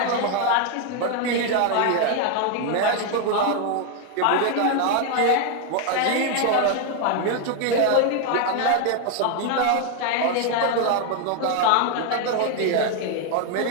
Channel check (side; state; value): both; different; correlation 0.00